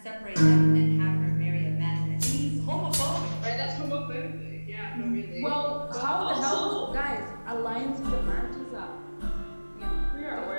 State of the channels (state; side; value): inverted; both; correlation -1.00